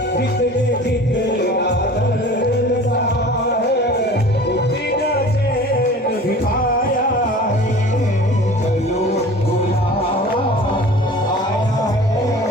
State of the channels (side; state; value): both; normal; correlation 0.42